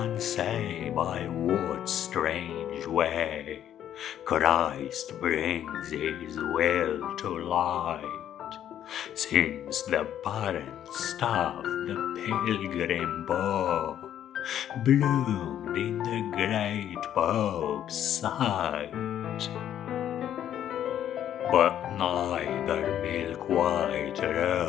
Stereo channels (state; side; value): quieter; right; 10.6 dB